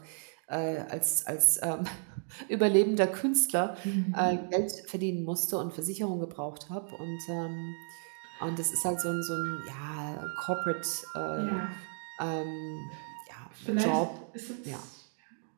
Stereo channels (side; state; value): left; silent; 56 dB below the other